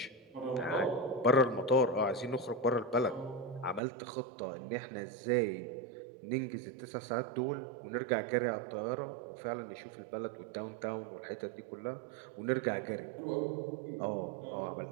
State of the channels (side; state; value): left; drops out; at 3.8 s